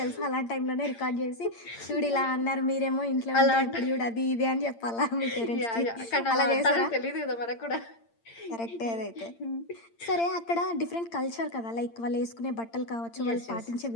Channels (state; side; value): late; right; 8.8 ms